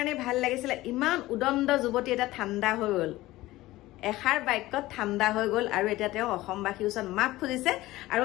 ভাল লাগিছিল ইমান উদণ্ড যুৱতী এটা ঠাণ্ডা হৈ গ'ল এষাৰ বাক্যত ঠাণ্ডা হৈ গ'ল আৰু এতিয়া তেওঁ অসমবাসীৰ ওচৰত মাফ খুজিছে আৰু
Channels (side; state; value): right; quieter; 17.6 dB